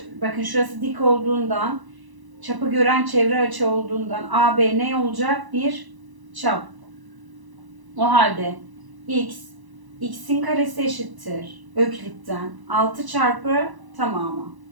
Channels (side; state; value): left; late; 1.0 ms